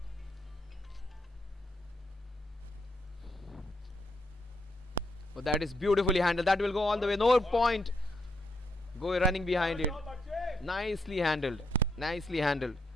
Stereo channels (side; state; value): both; normal; correlation 0.77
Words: Oh, that is beautifully handled. That will go all the way. No point. Go running behind it. Nicely handled. Nicely handled.